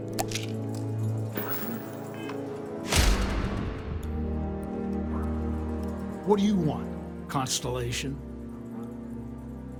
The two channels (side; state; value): both; identical; correlation 1.00